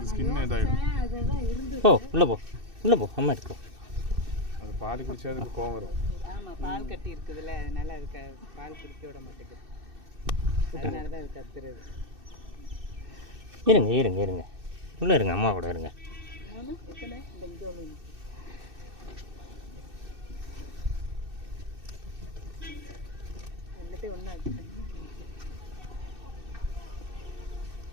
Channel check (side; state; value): left; late; 2.6 ms